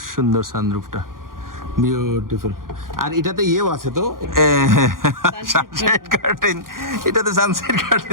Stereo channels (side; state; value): left; late; 0.91 ms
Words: সুন্দর সানরুফটা, বিউটিফুল। আর এটাতে ইয়েও আছে তো, সানসেট কার্টেন, এটাতে সানসেট